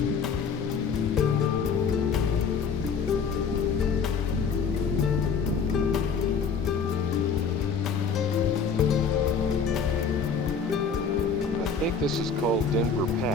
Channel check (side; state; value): right; quieter; 5.6 dB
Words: I think this is called Denver